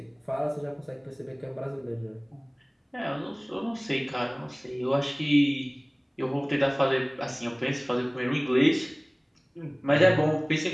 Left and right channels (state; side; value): identical; both; correlation 1.00